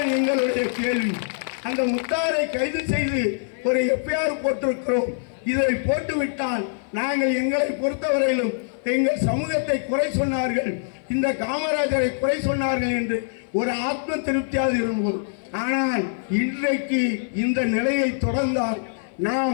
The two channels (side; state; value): right; silent; 57 dB below the other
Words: எங்களுடைய கேள்வி. அந்த முத்தாரை கைது செய்து ஒரு எஃப்ஐஆர் போட்டிருக்கிறோம். இதை போட்டுவிட்டால் நாங்கள் எங்களை பொறுத்தவரையிலும் எங்கள் சமூகத்தை குறை சொன்னார்கள், இந்த காமராஜரை குறை சொன்னார்கள் என்று ஒரு ஆத்ம திருப்தியாக இருந்தோம். ஆனால் இன்றைக்கு இந்த நிலையை தொடர்ந்தால்